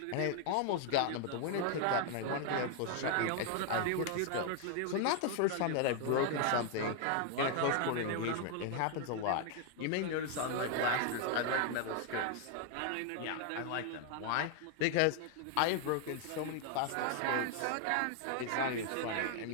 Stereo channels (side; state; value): both; different; correlation 0.00